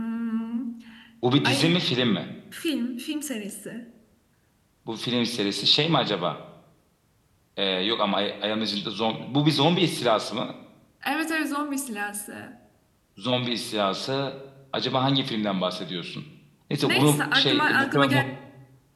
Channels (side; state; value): both; identical; correlation 1.00